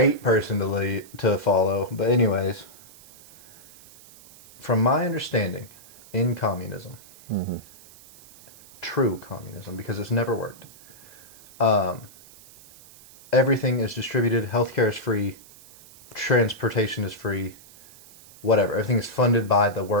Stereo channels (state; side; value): noise; right; hiss, 22 dB below the sound